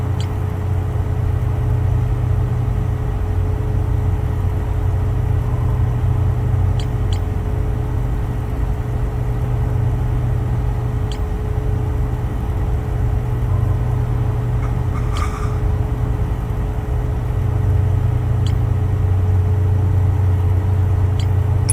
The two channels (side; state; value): both; identical; correlation 1.00